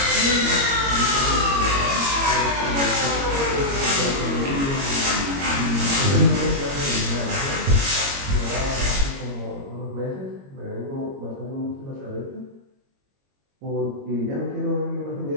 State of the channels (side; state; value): left; late; 22 ms